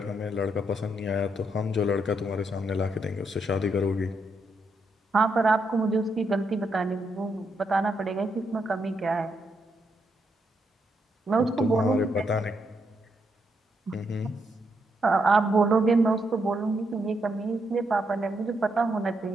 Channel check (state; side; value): normal; both; correlation 0.79